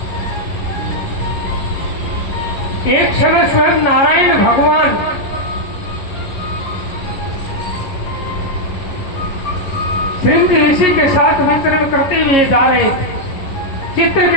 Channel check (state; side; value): late; right; 11 ms